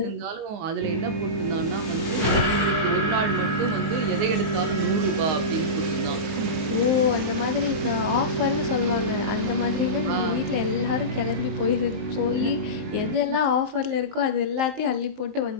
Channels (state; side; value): late; left; 19 ms